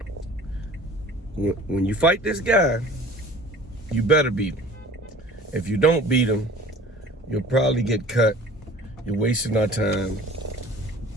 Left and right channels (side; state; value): both; normal; correlation 0.45